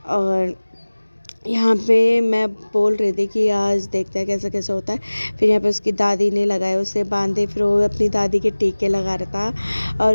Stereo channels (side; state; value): both; inverted; correlation -1.00